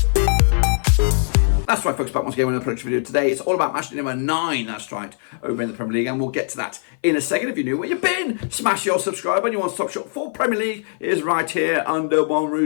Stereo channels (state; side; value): silent; right; 57 dB below the other